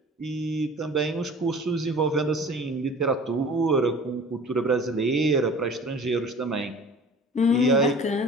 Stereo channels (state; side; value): normal; both; correlation 0.44